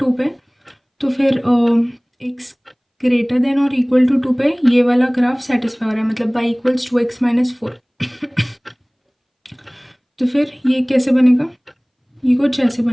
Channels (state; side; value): identical; both; correlation 1.00